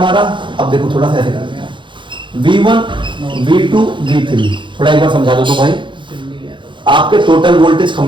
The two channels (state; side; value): late; left; 0.23 ms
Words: अब देखो थोड़ा सा ऐसे करते हैं, V1 V2 V3। थोड़ा एक बार समझा दो तो भाई, आपके टोटल वोल्टेज